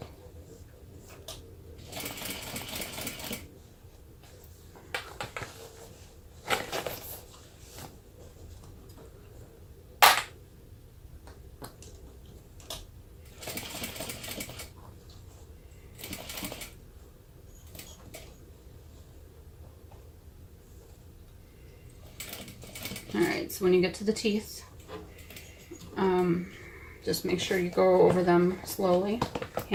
And alright, so when you get to the teeth, just make sure you go over them slowly.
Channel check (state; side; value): identical; both; correlation 1.00